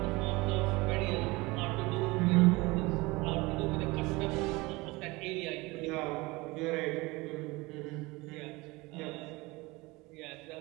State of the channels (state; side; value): quieter; left; 22.9 dB